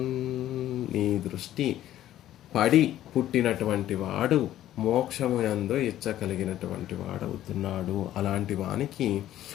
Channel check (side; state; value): right; quieter; 12.9 dB